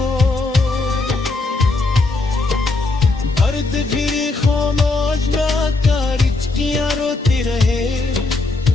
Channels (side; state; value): right; quieter; 3.3 dB